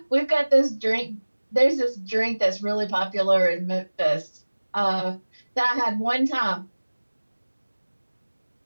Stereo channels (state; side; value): inverted; both; correlation -1.00